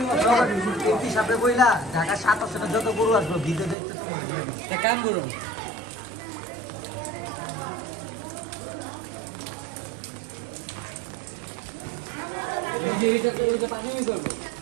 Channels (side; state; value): left; drops out; at 3.8 s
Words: যত গরু আসবো ভিডিও দেখতে তোমার কাম করুন।